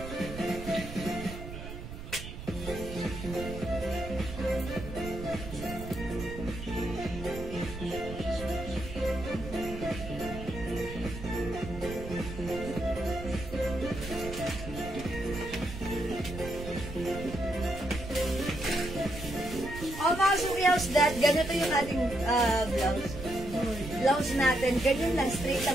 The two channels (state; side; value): noise; right; rumble, 10 dB below the sound